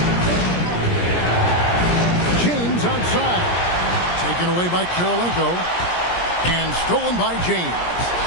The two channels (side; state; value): right; late; 17 ms